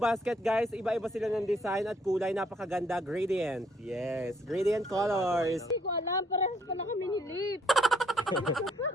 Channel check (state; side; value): normal; both; correlation 0.66